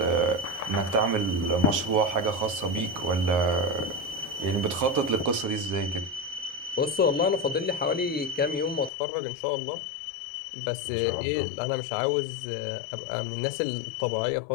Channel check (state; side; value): drops out; right; at 8.9 s